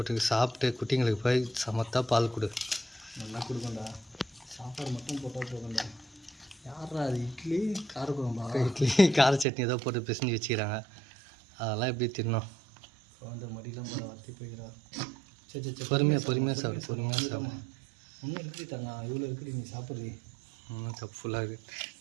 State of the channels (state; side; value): drops out; left; at 9.5 s